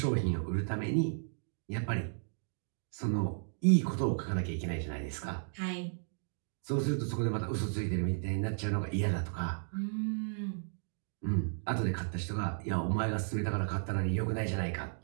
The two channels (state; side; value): silent; left; digital silence